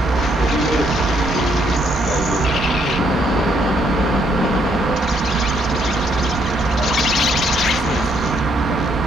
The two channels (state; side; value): normal; both; correlation 0.72